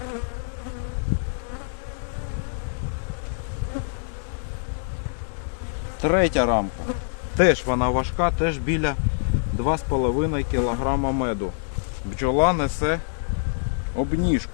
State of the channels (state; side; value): silent; right; digital silence